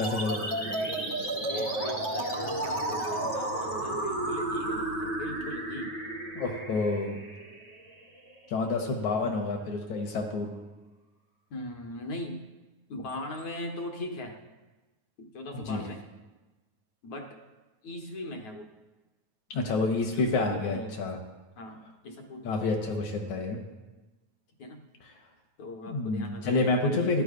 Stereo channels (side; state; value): right; late; 9.3 ms